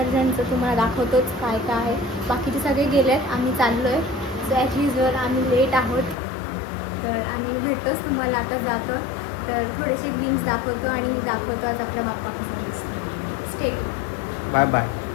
तुम्हाला दाखवतोच काय काय आहे. बाकीचे सगळे गेले आहेत, आम्ही चाललो आहे. सो ॲज युजल आम्ही लेट आहोत, तर आम्ही भेटतोच तुम्हाला आता जातो. तर थोडेसे ग्लिम्स दाखवतो आणि दाखवतो आज आपला बाप्पा कसा दिसतो. Stay tune. Bye bye.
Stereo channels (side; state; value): right; drops out; at 6.2 s